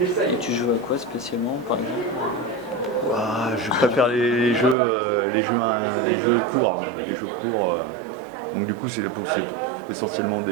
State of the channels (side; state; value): left; drops out; at 4.8 s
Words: tu joues à quoi spécialement, par exemple? Je préfère les jeux courts. Les jeux courts. Donc du coup, c'est essentiellement